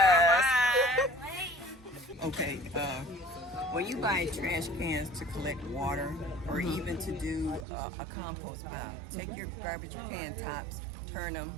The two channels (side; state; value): left; drops out; at 7.7 s